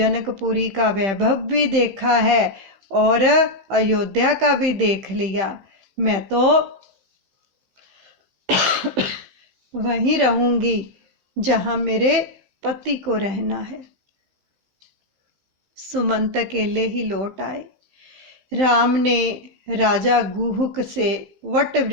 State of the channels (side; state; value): left; late; 15 ms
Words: का वैभव भी देखा है और अयोध्या का भी देख लिया, मैं तो वहीं रहूंगी जहां मेरे पति को रहना है। सुमंत अकेले ही लौट आए। राम ने राजा गुहुक से वट